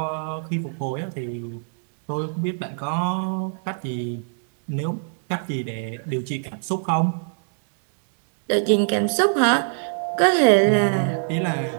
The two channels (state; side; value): silent; left; digital silence